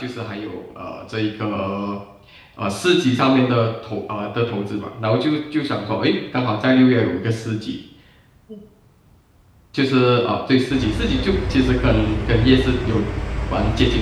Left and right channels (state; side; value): identical; both; correlation 1.00